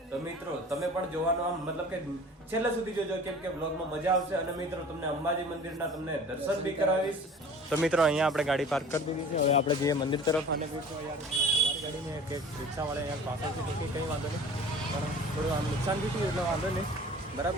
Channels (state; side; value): normal; both; correlation 0.43